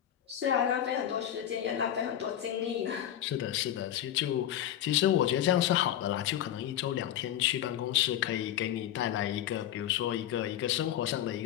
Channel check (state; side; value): quieter; right; 11.3 dB